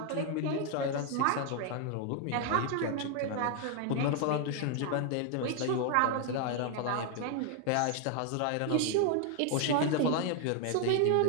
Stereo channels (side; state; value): both; different; correlation 0.00